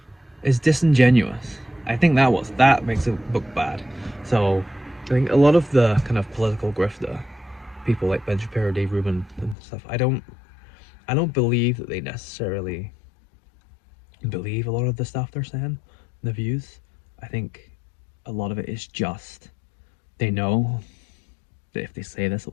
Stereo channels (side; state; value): right; drops out; at 9.6 s